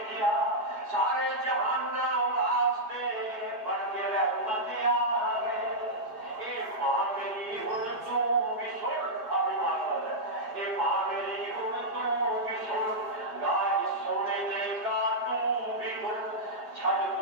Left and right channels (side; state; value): left; late; 4.7 ms